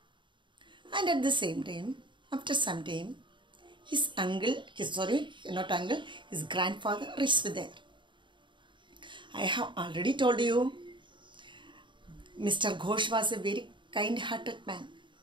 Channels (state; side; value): late; left; 0.23 ms